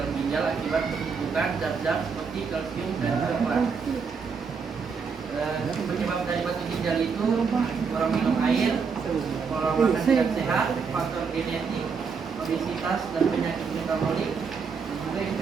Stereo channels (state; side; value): quieter; left; 5.6 dB